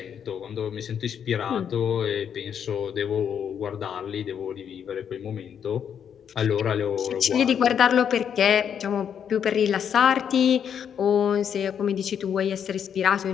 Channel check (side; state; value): right; quieter; 8.2 dB